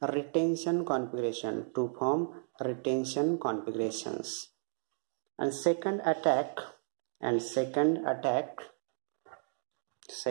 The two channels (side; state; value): left; silent; digital silence